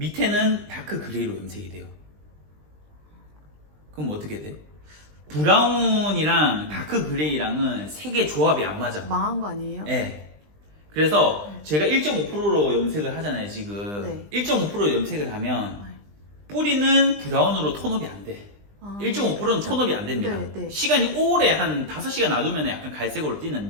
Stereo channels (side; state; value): left; late; 20 ms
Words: 다크 그레이로 염색이 돼요. 그럼 어떻게 돼? 브라운이랑 다크 그레이랑은 색의 조합이 안 맞아. 망한 거 아니에요? 네. 그래서 제가 1.5%로 염색을 하잖아요, 지금. 네. 1.5%로 염색을 하면 뿌리는 브라운으로 톤업이 안 돼. 1.5%는 톤업이 안 됩니다. 네, 네. 시간이 오래 한 5시간 놔두면 약간 갈색으로